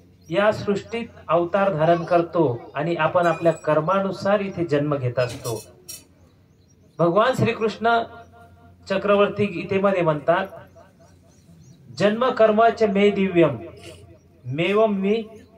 या सृष्टीत अवतार धारण करतो आणि आपण आपल्या कर्मानुसार इथे जन्म घेत असतो. भगवान श्रीकृष्ण चक्रवर्ती गीतेमध्ये म्हणतात, जन्म कर्माच मे दिव्यम मेवम मी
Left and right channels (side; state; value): both; identical; correlation 1.00